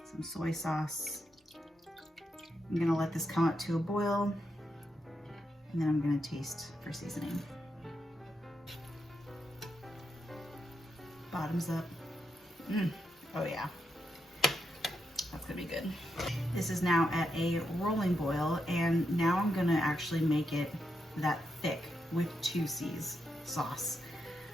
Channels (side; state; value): both; normal; correlation 0.83